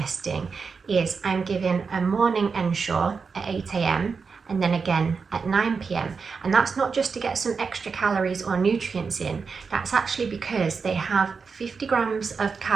is I'm given a morning ensure at 8 AM and then again at 9 PM. And that's not just to get some extra calories or nutrients in, that's actually because they have 50 grams of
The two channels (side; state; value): left; quieter; 5.2 dB